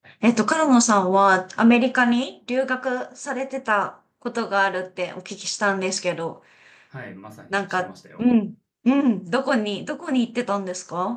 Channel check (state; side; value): identical; both; correlation 1.00